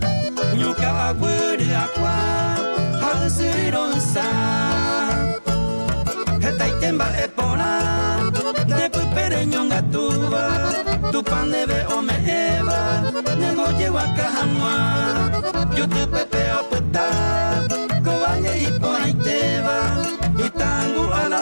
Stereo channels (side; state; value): both; inverted; correlation -1.00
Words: Ñuka agüere aqua, halsironsa. Esta y temba e pona, de pupere ñonga tuba. Tu pan de veo me eva, nemo lleva cajanua. Yo te pepeo puta, cobaye y pona y te va. Y tango a la